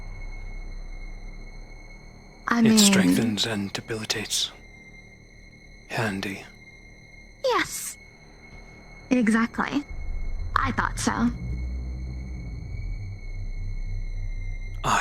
It strengthens and debilitates. Handy. Yes. Exactly. I thought so.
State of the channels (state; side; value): identical; both; correlation 1.00